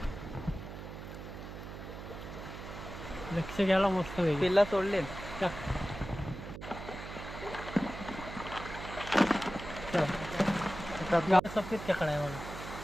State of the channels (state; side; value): noise; right; hum, 10 dB below the sound